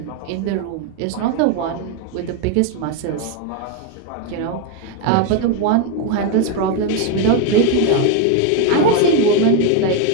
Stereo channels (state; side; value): different; both; correlation 0.02